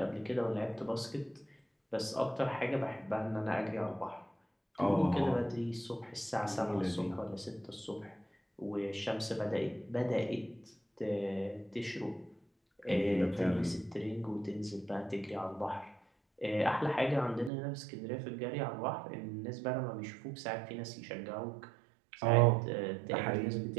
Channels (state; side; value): drops out; left; at 17.5 s